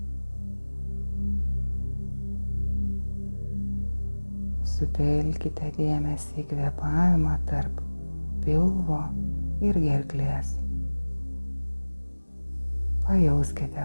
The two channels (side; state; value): both; inverted; correlation -1.00